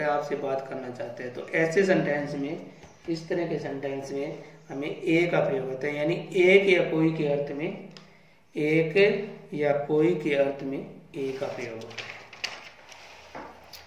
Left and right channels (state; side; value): identical; both; correlation 1.00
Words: है आपसे बात करना चाहते हैं। तो ऐसे सेंटेंस में, इस तरह के सेंटेंस में हमें ए का प्रयोग होता है, यानी एक या कोई के अर्थ में, एक या कोई के अर्थ में ए का प्रयोग होता है।